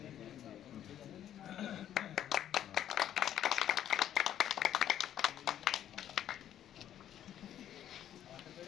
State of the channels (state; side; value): quieter; right; 10.9 dB